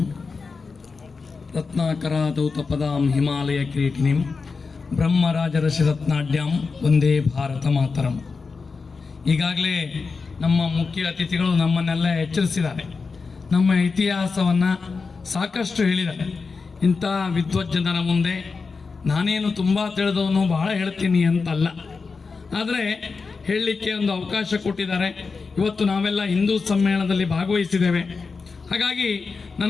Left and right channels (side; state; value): right; quieter; 4.6 dB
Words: ರತ್ನಾಕರಾದೌತಪದಾಂ ಹಿಮಾಲಯ ಕಿರೀಟಿನಿಂ ಬ್ರಹ್ಮರಾಜರಸಿರತ್ನಾಢ್ಯಾಂ ವಂದೇ ಭಾರತ ಮಾತರಂ. ಈಗಾಗಲೇ ನಮ್ಮ ಮುಖ್ಯ ಅತಿಥಿಗಳು ನಮ್ಮನ್ನೆಲ್ಲ ಎಚ್ಚರಿಸಿದ್ದಾರೆ. ನಮ್ಮ ಇತಿಹಾಸವನ್ನು ಸಾಕಷ್ಟು ಹೇಳಿದ್ದಾರೆ. ಇಂಥ ವಿದ್ವಜ್ಜನರ ಮುಂದೆ ನಾನೇನು ತುಂಬ ತಿಳಿದವನು ಬಹಳ ಹೇಳ್ತೀನಿ ಅಂತಲ್ಲ, ಆದರೆ ಹೇಳಲಿಕ್ಕೆ ಒಂದು ಅವಕಾಶ ಕೊಟ್ಟಿದ್ದಾರೆ. ಇವತ್ತು ನಾವೆಲ್ಲ ಹಿಂದೂ ಸಮ್ಮೇಳನದಲ್ಲಿ ಭಾಗವಹಿಸಿದ್ದೇವೆ. ಹಾಗಾಗಿ